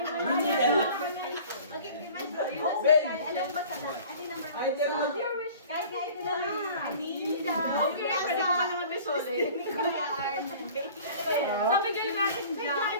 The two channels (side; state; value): both; inverted; correlation -0.45